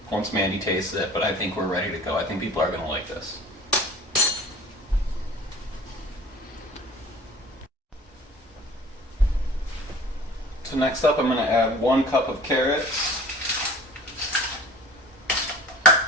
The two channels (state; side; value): normal; both; correlation 0.44